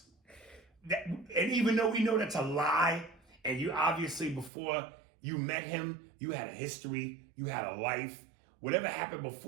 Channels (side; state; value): left; drops out; at 4.5 s